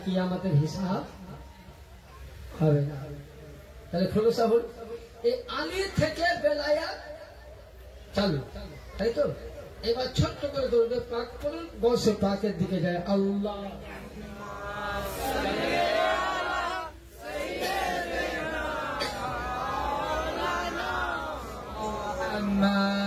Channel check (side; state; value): both; identical; correlation 1.00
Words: কিয়ামতের হিসাব হবে না তাহলে খোলসা হল এই আলী থেকে বেলায়াত চালু তাই তো এবার ছোট্ট করে দৌড়বে পাক করুন গৌসে পাকের দিকে যায় আল্লাহ